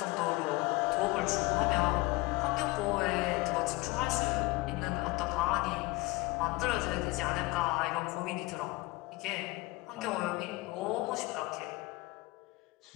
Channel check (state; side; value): quieter; right; 22.0 dB